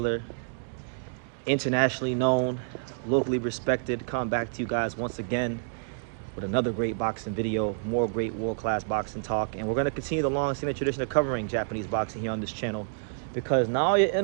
internationally known, locally respected, coming back to you guys once again with another great boxing video, more great world-class boxing talk, and we're going to continue the long-standing tradition of covering Japanese boxing here on this channel because Naoya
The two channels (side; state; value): left; silent; digital silence